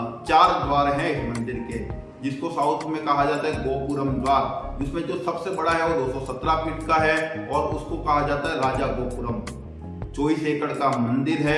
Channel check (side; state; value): both; identical; correlation 1.00